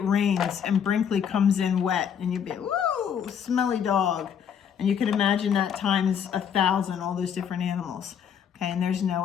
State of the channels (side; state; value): right; quieter; 8.0 dB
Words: rains and Brinkley comes in wet, and you'll be, woo, smelly dog. And you can imagine that times 1,000, all those different animals. Okay, and there's